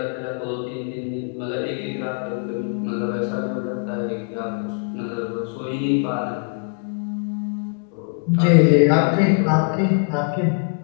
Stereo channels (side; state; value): right; quieter; 39.6 dB